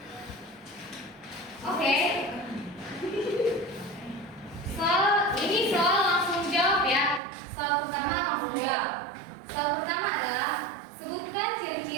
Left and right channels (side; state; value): left; drops out; at 7.2 s